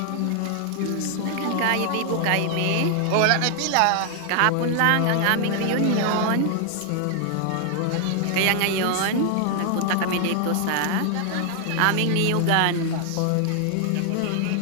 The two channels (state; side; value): different; both; correlation 0.00